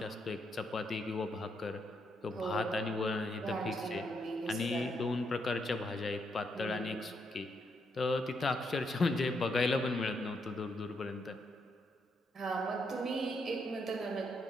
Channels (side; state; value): both; normal; correlation 0.77